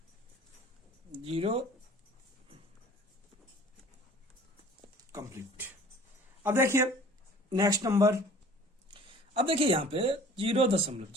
0 कंप्लीट। अब देखिए नेक्स्ट नंबर, अब देखिए यहां पे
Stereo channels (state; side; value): normal; both; correlation 0.48